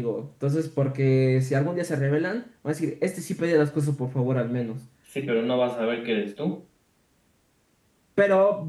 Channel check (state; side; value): identical; both; correlation 1.00